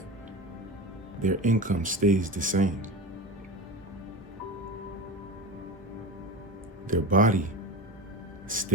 their income stays the same. Their body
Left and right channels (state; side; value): normal; both; correlation 0.27